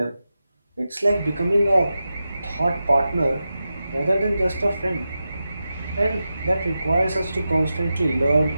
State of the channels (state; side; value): inverted; both; correlation -0.91